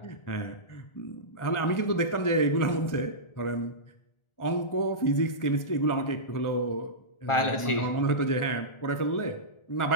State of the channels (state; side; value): late; right; 1.4 ms